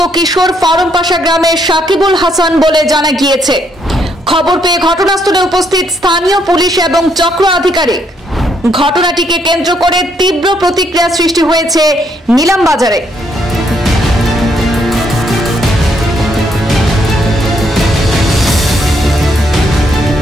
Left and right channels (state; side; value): normal; both; correlation 0.73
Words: কিশোর ফারমপাশা গ্রামের সাকিবুল হাসান বলে জানা গিয়েছে। খবর পেয়ে ঘটনাস্থলে উপস্থিত স্থানীয় পুলিশ এবং চক্র আধিকারিক। ঘটনাটিকে কেন্দ্র করে তীব্র প্রতিক্রিয়া সৃষ্টি হয়েছে নীলামবাজারে।